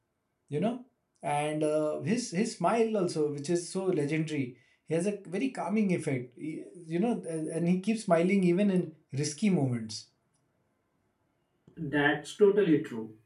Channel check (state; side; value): identical; both; correlation 1.00